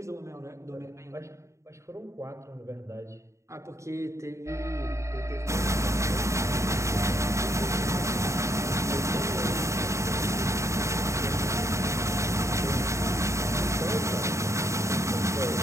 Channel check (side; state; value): left; late; 0.14 ms